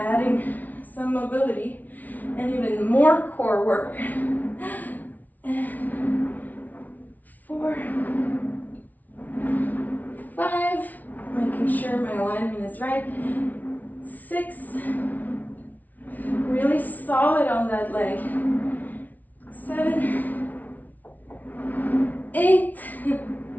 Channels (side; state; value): right; late; 0.077 ms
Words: some mobility and even more core work. And 4, 5, making sure my alignment is right. 6, really solid on that leg. 7, 8,